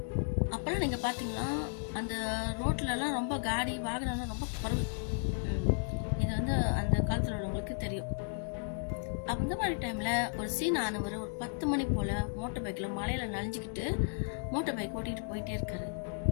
அப்போல்லாம் நீங்கள் பார்த்தீங்கன்னா அந்த ரோட்லலாம் ரொம்ப காடி வாகனம்லாம் ரொம்ப குறைவு. இது வந்து அந்த காலத்தில் உள்ளவங்களுக்கு தெரியும். அந்த மாதிரி டைமில் ஒரு சீன் ஆனவர் ஒரு 10 மணி போல் மோட்டர் பைக்கில் மலையில் நனைஞ்சிக்கிட்டு மோட்டர் பைக் ஓட்டிகிட்டு போயிட்டே இருக்காரு.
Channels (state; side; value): silent; right; 55 dB below the other